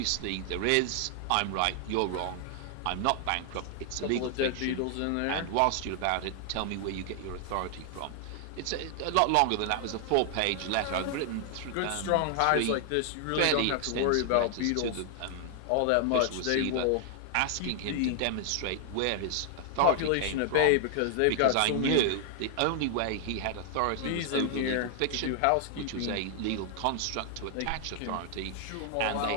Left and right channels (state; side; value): different; both; correlation 0.00